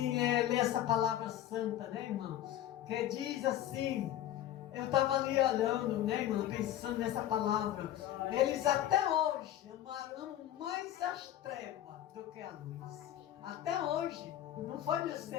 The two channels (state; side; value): quieter; right; 12.4 dB